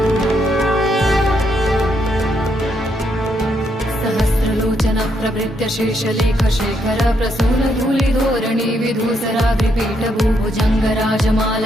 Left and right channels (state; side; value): normal; both; correlation 0.76